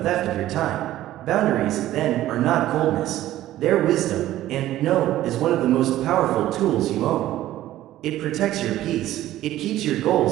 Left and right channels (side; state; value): left; quieter; 14.2 dB